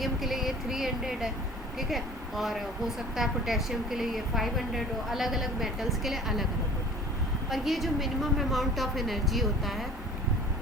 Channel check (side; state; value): both; normal; correlation 0.45